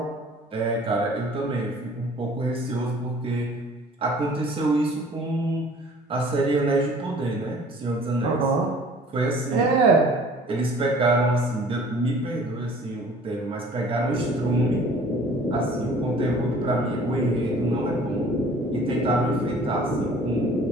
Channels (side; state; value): both; normal; correlation 0.51